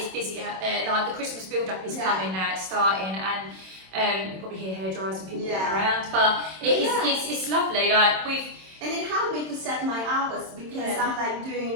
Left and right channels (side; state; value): left; late; 26 ms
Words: busy out there. Like the Christmas build-up is coming now. It's starting, and you probably hear hairdryers and people walking around. But it's lovely. Like and it helped me to set my hours, because I'm like